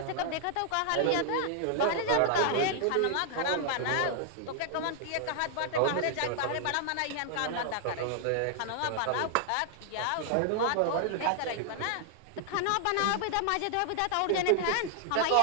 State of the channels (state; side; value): different; both; correlation 0.00